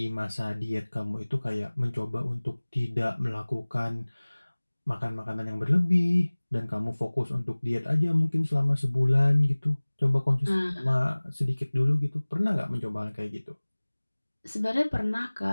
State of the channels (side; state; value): both; inverted; correlation -1.00